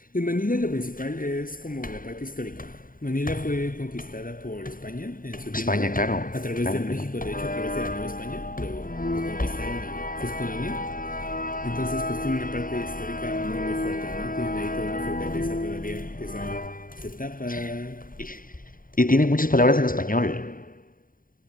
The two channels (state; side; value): late; right; 0.41 ms